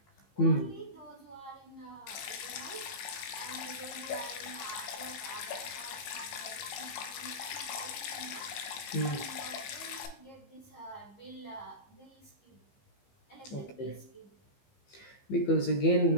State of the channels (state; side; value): late; right; 15 ms